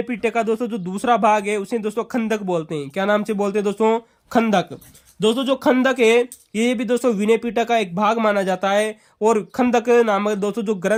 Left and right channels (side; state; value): both; identical; correlation 1.00